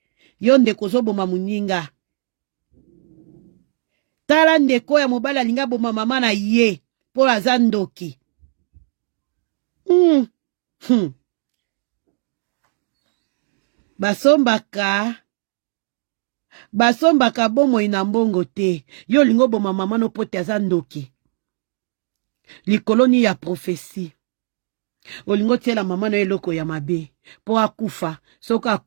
yo ndeko ozoboma moninga tala ndeko ya mobali alinga boma mama na ye mpo aza ndoki basombaka bomoi na mbongo te yo lingo boma mama no pote aza ndoki likoloni ya profesi olingo tiela mama na eloko ya mabe po akufa soko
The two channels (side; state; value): left; silent; digital silence